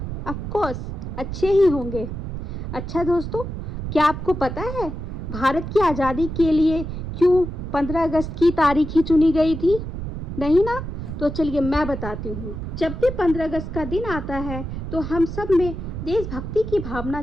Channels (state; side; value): noise; right; rumble, 6 dB below the sound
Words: ऑफ कोर्स अच्छे ही होंगे। अच्छा दोस्तों, क्या आपको पता है भारत की आज़ादी के लिए क्यों 15 अगस्त की तारीख ही चुनी गई थी? नहीं ना? तो चलिए मैं बताती हूँ। जब भी 15 अगस्त का दिन आता है तो हम सब में देशभक्ति की भावना